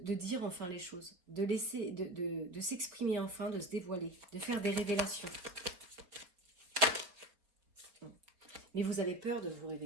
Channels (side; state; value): left; late; 4.5 ms